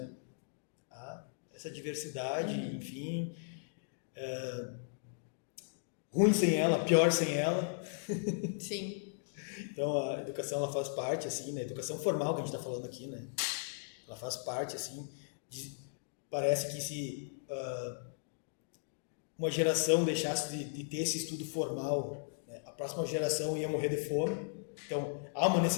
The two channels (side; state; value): right; silent; digital silence